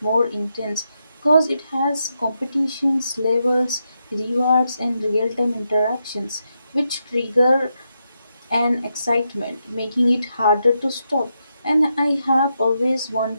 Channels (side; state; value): both; inverted; correlation -0.83